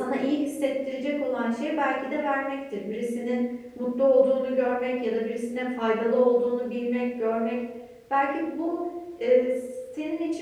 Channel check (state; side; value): identical; both; correlation 1.00